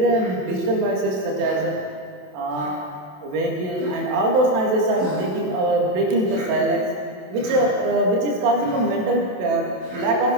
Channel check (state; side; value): late; left; 27 ms